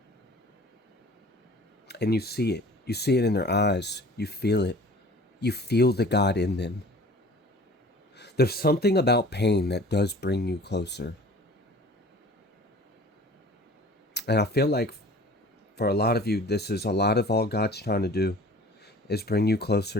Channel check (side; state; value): both; normal; correlation 0.45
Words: And you see it. You see it in their eyes. You feel it. You feel the God in them. There's something about pain that does bring you closer. And I feel like for a lot of you, this is a lot of all God's trying to do, is bring you